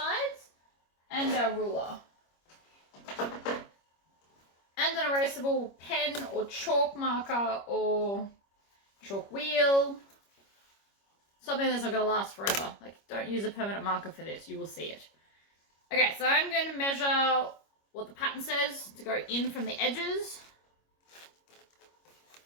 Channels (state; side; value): late; right; 25 ms